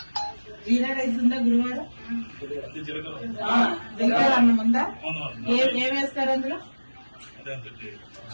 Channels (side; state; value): both; inverted; correlation -1.00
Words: జీరా రైస్ ఉందా గురువారం? జీలకర్ర అన్నం ఉందా? ఏం వేస్తారు అందులో?